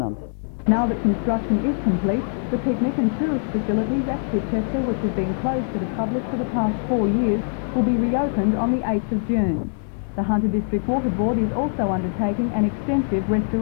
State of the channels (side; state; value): right; silent; 64 dB below the other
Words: The Hunter District Water Board is also undertaking an extensive